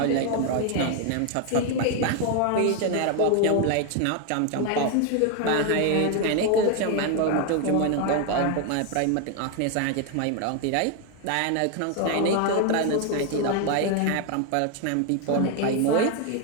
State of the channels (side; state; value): both; different; correlation 0.01